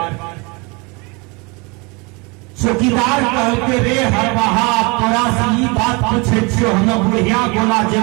चौकीदार कहते, रे हलवाहा तोरा से ई बात पूछे छियो, हम बुढ़िया गोला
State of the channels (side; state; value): left; quieter; 28.4 dB